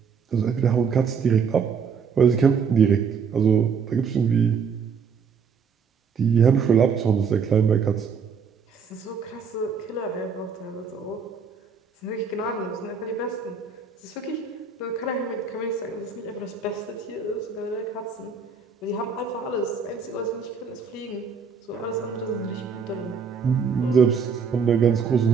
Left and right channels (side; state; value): left; quieter; 5.9 dB